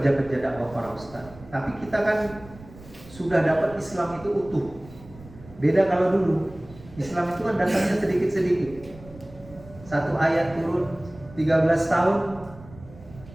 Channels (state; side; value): noise; right; rumble, 20 dB below the sound